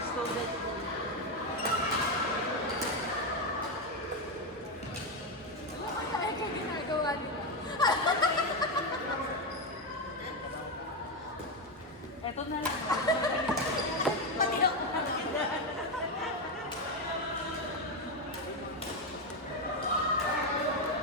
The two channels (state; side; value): normal; both; correlation 0.08